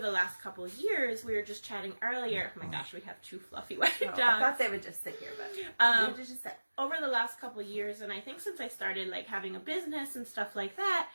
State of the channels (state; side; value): inverted; both; correlation -1.00